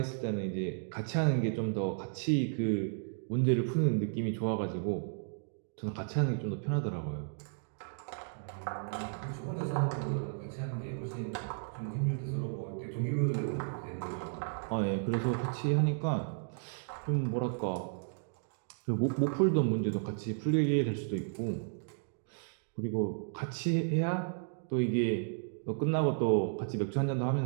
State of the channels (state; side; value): silent; left; digital silence